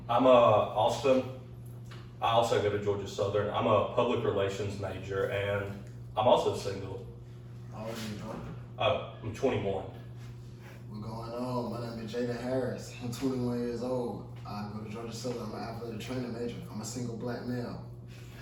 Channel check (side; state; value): both; identical; correlation 1.00